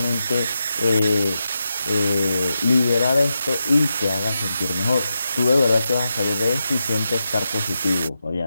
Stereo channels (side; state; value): both; inverted; correlation -0.88